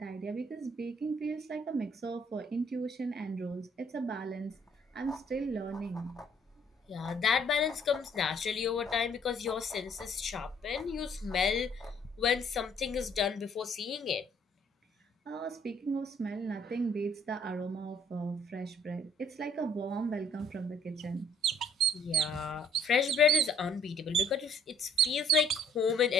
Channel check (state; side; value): normal; both; correlation 0.60